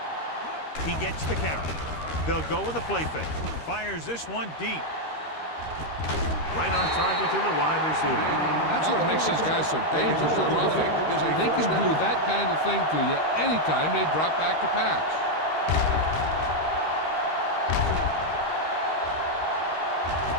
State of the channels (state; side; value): late; right; 13 ms